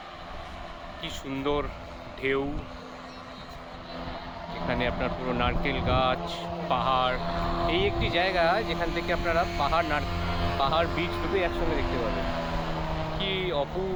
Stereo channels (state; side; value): identical; both; correlation 1.00